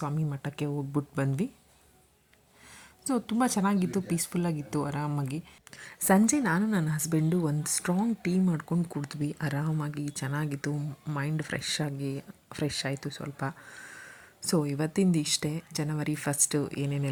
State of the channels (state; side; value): identical; both; correlation 1.00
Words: ಮಠಕ್ಕೆ ಹೋಗ್ಬಿಟ್ಟು ಬಂದ್ವಿ. ಸೊ ತುಂಬ ಚೆನ್ನಾಗಿತ್ತು, ಪೀಸ್ಫುಲ್ಲಾಗಿತ್ತು, ಆರಾಮಾಗಿ. ಸಂಜೆ ನಾನು ನನ್ನ ಹಸ್ಬೆಂಡು ಒಂದು ಸ್ಟ್ರಾಂಗ್ ಟೀ ಮಾಡ್ಕೊಂಡು ಕುಡಿದ್ವಿ. ಆರಾಮಾಗಿ ಚೆನ್ನಾಗಿತ್ತು. ಮೈಂಡ್ ಫ್ರೆಶ್ ಆಯಿತು ಸ್ವಲ್ಪ. ಸೊ ಇವತ್ತಿಂದ ಇಷ್ಟೇ. ಜನವರಿ ಫಸ್ಟು